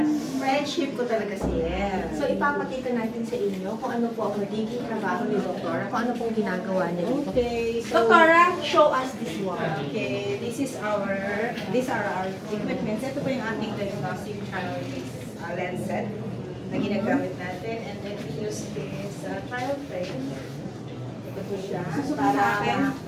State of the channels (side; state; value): both; identical; correlation 1.00